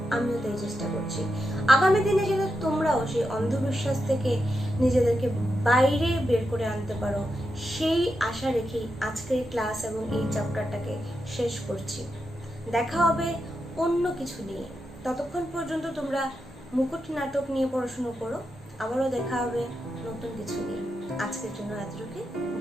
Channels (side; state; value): both; normal; correlation 0.86